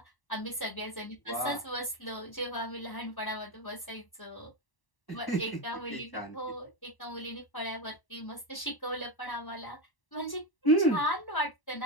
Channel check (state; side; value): late; right; 1.0 ms